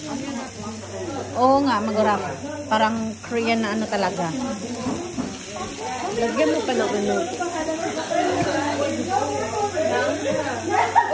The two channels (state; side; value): identical; both; correlation 1.00